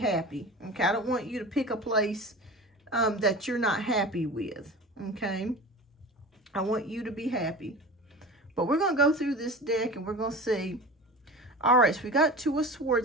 Okay, I don't want you to pick a place that you're not happy with. Okay, I want you to be happy. But we're going to go through this deck and we're going to see. All right, so we got Two of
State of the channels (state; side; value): normal; both; correlation 0.34